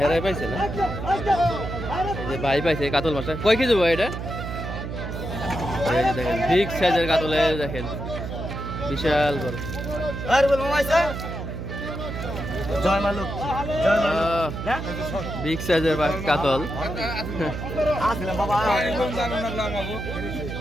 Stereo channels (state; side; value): noise; right; hum, 6 dB below the sound